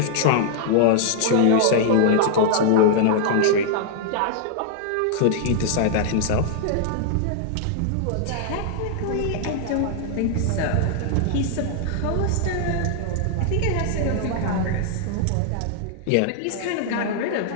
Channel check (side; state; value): both; different; correlation -0.01